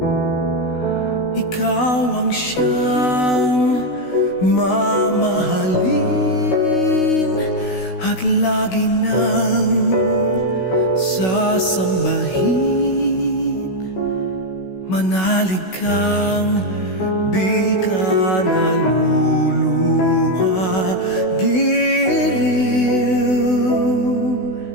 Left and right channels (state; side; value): late; right; 16 ms